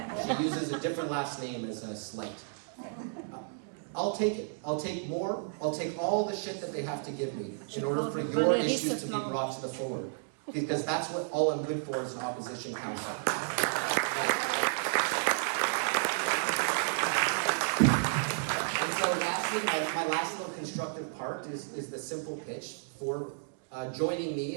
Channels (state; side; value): silent; left; digital silence